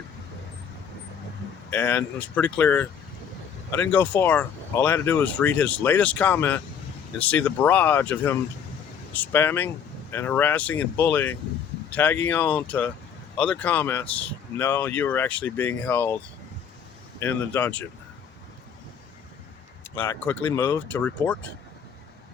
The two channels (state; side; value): quieter; right; 7.6 dB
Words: And it was pretty clear. I didn't go far. All I had to do was read his latest comment and see the barrage of him spamming and harassing and bullying, tagging on to other comments. No, you were actually being held in the dungeon. I quickly moved to report